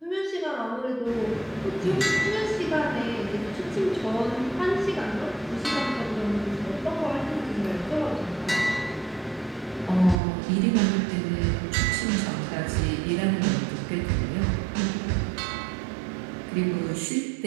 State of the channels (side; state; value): left; drops out; at 10.2 s